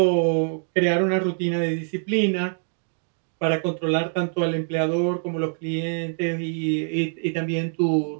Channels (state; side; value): silent; left; digital silence